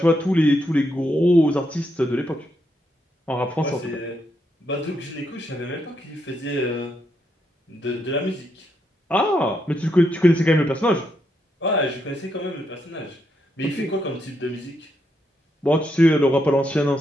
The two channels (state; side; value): normal; both; correlation 0.79